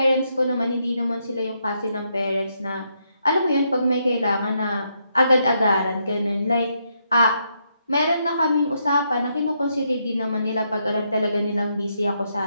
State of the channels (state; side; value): inverted; both; correlation -0.78